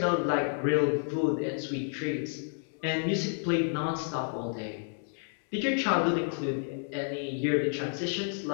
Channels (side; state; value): right; silent; 58 dB below the other